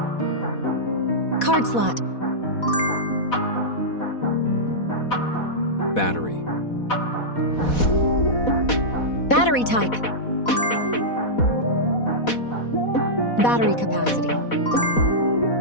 Card slot. Battery. Battery type. Battery capacity.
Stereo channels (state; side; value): late; right; 4.1 ms